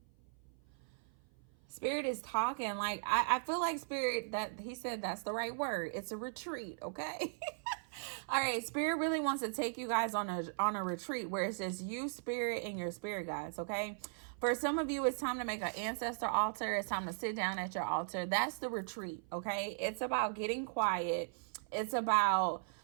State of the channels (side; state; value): left; silent; 52 dB below the other